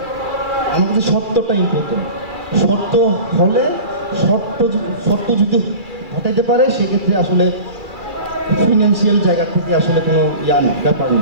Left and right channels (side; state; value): left; late; 2.4 ms